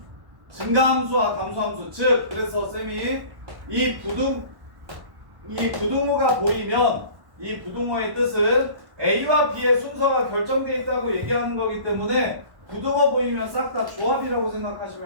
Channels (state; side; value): late; left; 1.1 ms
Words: 증가함수와 감소함수 즉 그래서 쌤이 이 부등호가 보이면 이 부등호의 뜻은 A와 B의 순서가 결정되어 있다고 얘기하는 거기 때문에 부등호 보이면 싹 다 조합이라고